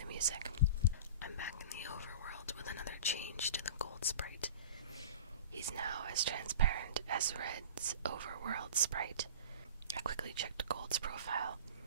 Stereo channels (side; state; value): both; inverted; correlation -0.36